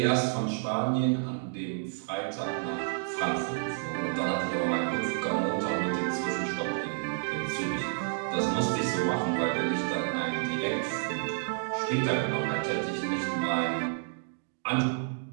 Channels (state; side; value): silent; left; digital silence